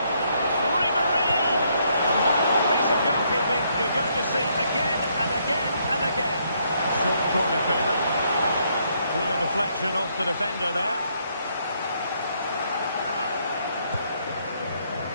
Ribery! A piece of goalkeeping you're going to see again and again and again. Short corner favourite. Clear deflection off the defender there.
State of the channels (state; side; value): inverted; both; correlation -0.72